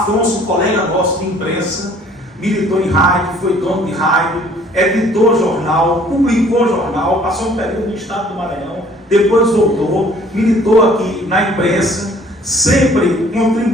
colega nosso de imprensa, militou em rádio, foi dono de rádio, editou jornal, publicou jornal, passou um período no estado do Maranhão, depois voltou, militou aqui na imprensa, sempre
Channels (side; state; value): both; normal; correlation 0.56